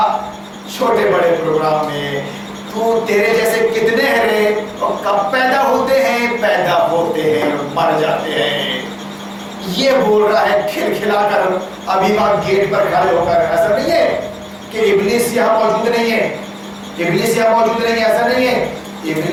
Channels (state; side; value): identical; both; correlation 1.00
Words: چھوٹے بڑے پروگرام میں. تو تیرے جیسے کتنے ہیں رے, اور کب پیدا ہوتے ہیں اور مر جاتے ہیں. یہ بول رہا ہے کھلکھلا کر ابھی وہاں گیٹ پر کھڑے ہو کر. ایسا نہیں ہے کہ ابلیس یہاں موجود نہیں ہے, ایسا نہیں ہے.